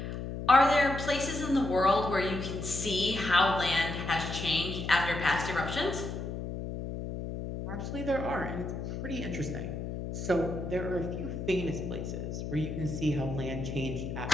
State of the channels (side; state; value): left; noise; hum, 6 dB below the sound